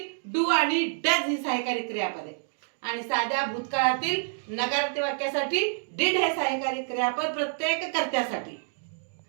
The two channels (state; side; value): silent; left; 59 dB below the other